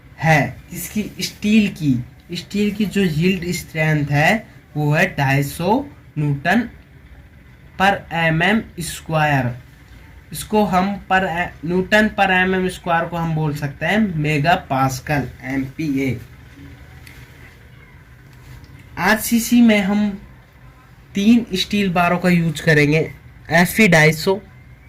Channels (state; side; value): identical; both; correlation 1.00